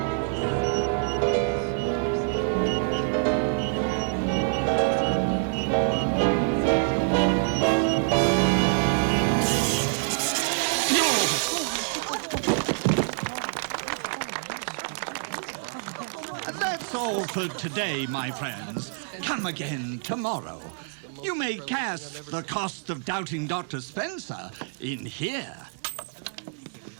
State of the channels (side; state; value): left; silent; digital silence